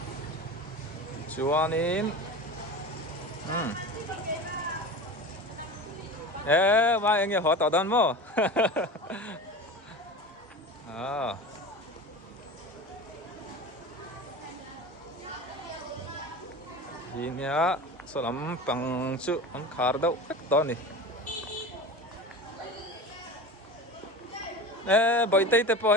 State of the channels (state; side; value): normal; both; correlation 0.31